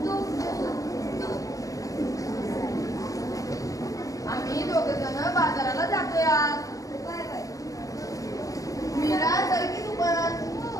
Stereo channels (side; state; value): right; late; 0.17 ms